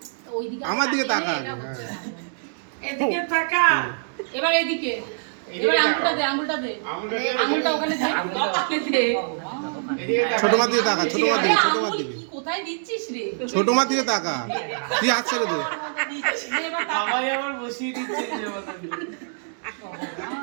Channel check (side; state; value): left; silent; digital silence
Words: ওইদিকে আমার দিকে তাকা আগে। হ্যাঁ এদিকে তাকা এবার এদিকে এবার আঙুলটা দে আঙুলটা ওখানে দে কপালে দে ছোট মার দিকে তাকা, ছোট মার দিকে, ছোট মার দিকে, কি কোথায় দিচ্ছিস রে ছোট মার দিকে তাকা। তুই হাত ছেড়ে দে। এবার তাকা। বাবাই আবার বসিয়ে দিচ্ছে যে মতন